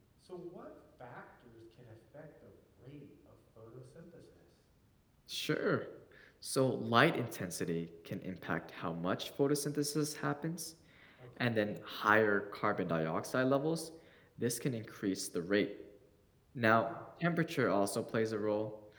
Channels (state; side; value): identical; both; correlation 1.00